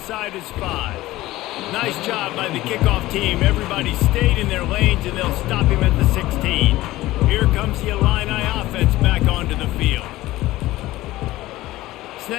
his 5. Nice job by the kickoff team. Everybody stayed in their lanes, and they'll stop him at the 16. Here comes the Illini offense back onto the field.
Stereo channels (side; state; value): right; quieter; 17.0 dB